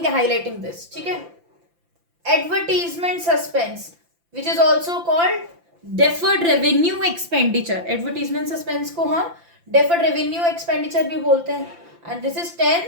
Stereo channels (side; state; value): left; late; 5.9 ms